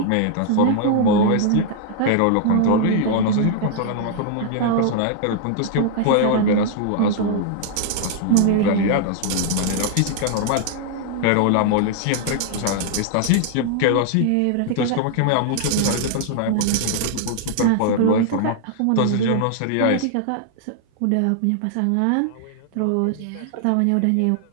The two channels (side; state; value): both; different; correlation 0.00